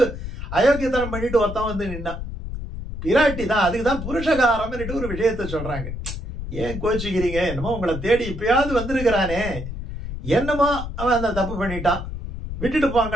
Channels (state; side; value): noise; left; rumble, 7 dB below the sound